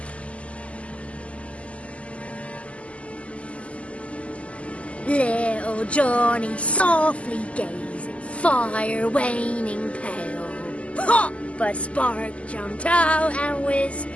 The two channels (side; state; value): right; late; 0.062 ms